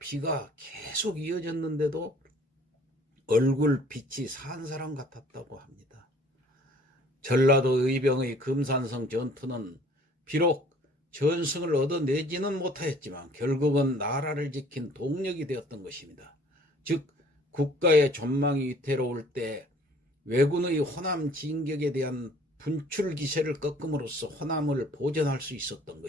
계속 이어졌는데도 얼굴 빛이 산 사람 같았다고 합니다. 전라도 의병의 금산성 전투는 비록 전승을 얻어내지는 못하였지만 결국은 나라를 지킨 동력이 되었던 것입니다. 즉 국가의 전망이 위태로울 때 왜군의 호남 진격에 대한 분출 기세를 꺾음으로써 호남을 보전할 수 있었던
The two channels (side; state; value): both; normal; correlation 0.54